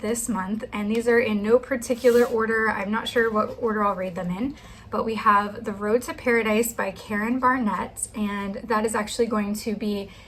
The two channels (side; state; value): both; identical; correlation 1.00